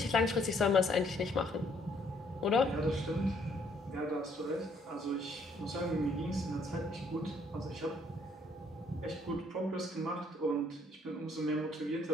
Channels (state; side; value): normal; both; correlation 0.66